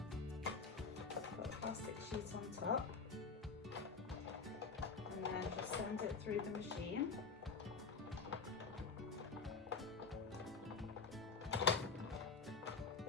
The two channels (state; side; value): quieter; right; 4.8 dB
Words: put a plastic sheet on top, and then just send it through the machine.